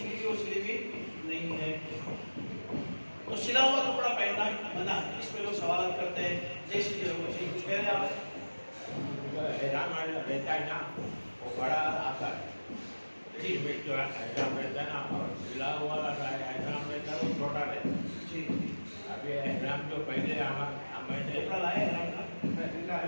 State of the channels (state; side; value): inverted; both; correlation -1.00